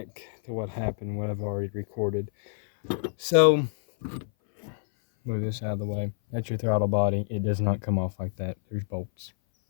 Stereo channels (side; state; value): right; silent; 57 dB below the other